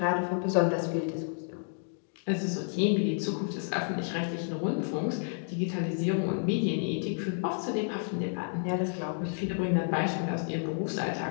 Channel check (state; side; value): silent; right; digital silence